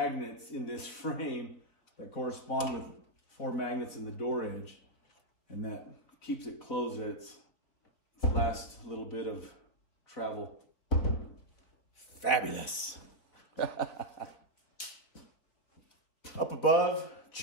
in this frame that correspond with 4 magnets in the door edge. And that keeps it closed at its last little bit of travel. Fabulous. Up above,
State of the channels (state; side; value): late; right; 4.0 ms